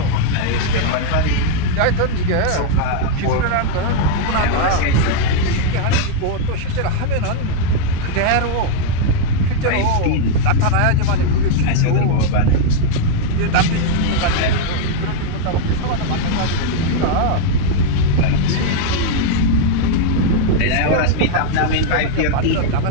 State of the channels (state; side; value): different; both; correlation 0.00